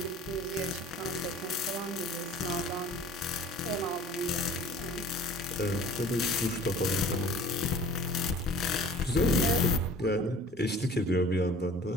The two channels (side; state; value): both; normal; correlation 0.47